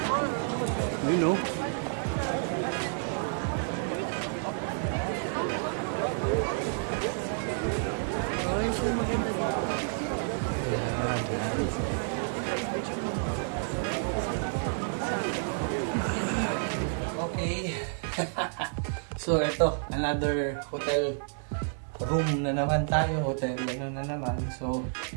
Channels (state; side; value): silent; left; digital silence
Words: You know. Okay. So ito, another hotel room na naman tayo, hotel na naman. So